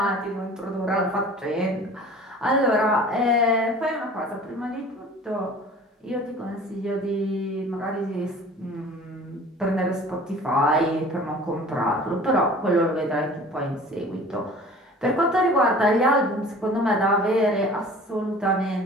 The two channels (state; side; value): normal; both; correlation 0.45